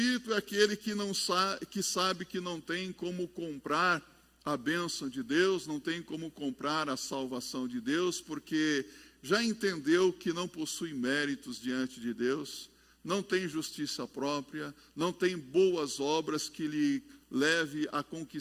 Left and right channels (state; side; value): identical; both; correlation 1.00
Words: é aquele que sabe que não tem como comprar a bênção de Deus, não tem como comprar a salvação de Deus, porque já entendeu que não possui méritos diante de Deus, não tem justiça própria, não tem boas obras que lhe leve a